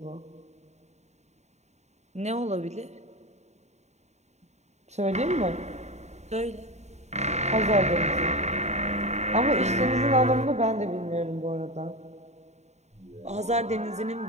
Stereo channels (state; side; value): late; left; 0.32 ms